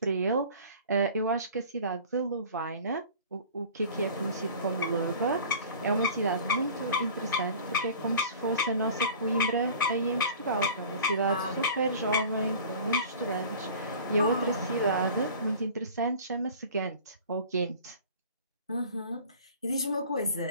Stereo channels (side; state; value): both; inverted; correlation -0.43